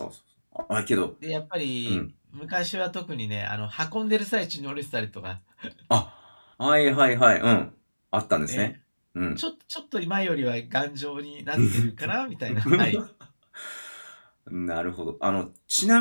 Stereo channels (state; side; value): inverted; both; correlation -1.00